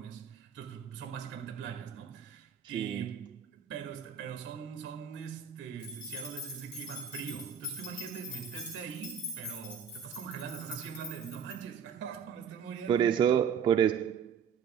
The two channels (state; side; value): quieter; left; 7.6 dB